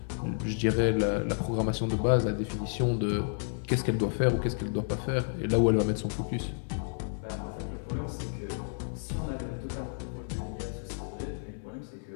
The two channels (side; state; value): right; silent; digital silence